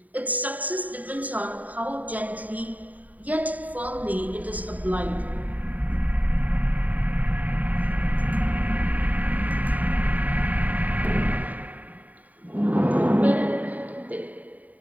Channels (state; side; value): late; left; 0.075 ms